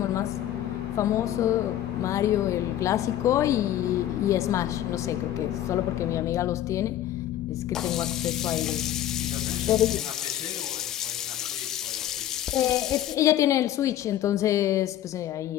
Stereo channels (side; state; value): right; quieter; 12.3 dB